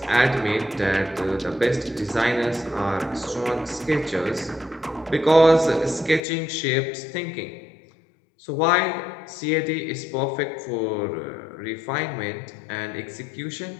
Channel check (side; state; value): right; drops out; at 6.2 s